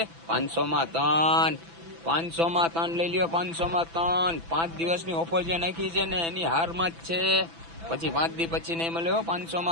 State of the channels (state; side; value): late; left; 6.0 ms